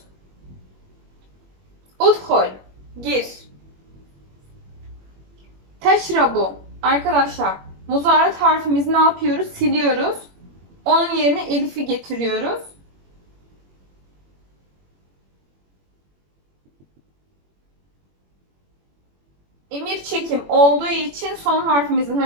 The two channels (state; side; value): late; left; 21 ms